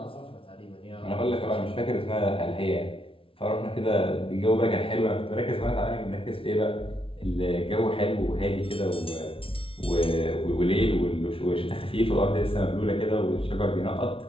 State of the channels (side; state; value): right; late; 0.26 ms